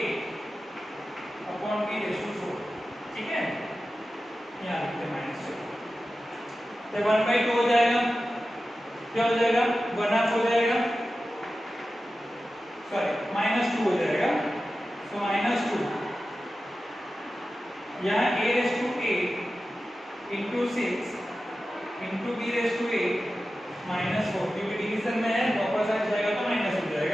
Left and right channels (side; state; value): both; normal; correlation 0.94